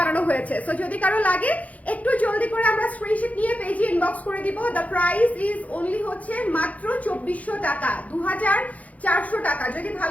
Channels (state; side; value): late; right; 0.070 ms